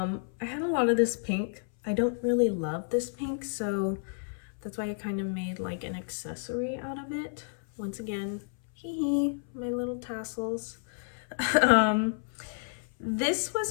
had a lot of this pink. I don't really love this pink, so that's why I kind of made like an accessory out of it. Once again, hee hee, my little tassels. This was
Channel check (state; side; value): silent; right; 57 dB below the other